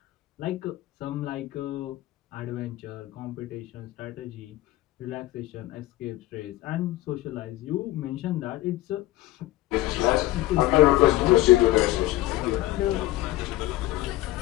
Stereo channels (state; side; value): quieter; right; 16.6 dB